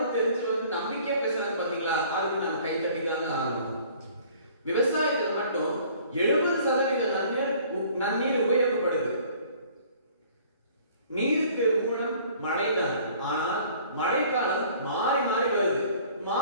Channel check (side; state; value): both; inverted; correlation -0.53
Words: தெரிஞ்சு நம்பிக்கையா பேசுறாங்க பாத்தீங்களா, அதுக்கு நம்ம கை தட்டி தாங்க ஆகணும். விவசாயத்தில் மட்டும் 70% நன்னீர் உபயோகப்படுது. நீருக்கு மூலம் மழைதான். ஆனால் மழைக்காலம் மாறி மாறி வருது.